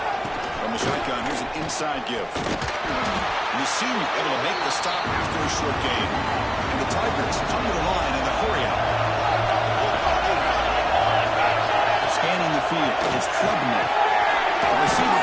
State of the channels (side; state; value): both; identical; correlation 1.00